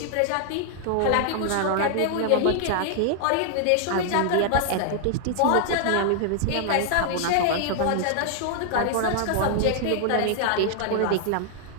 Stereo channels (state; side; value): different; both; correlation 0.00